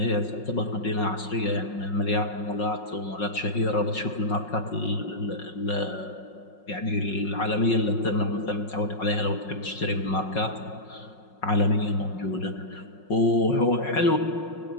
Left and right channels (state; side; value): late; right; 5.5 ms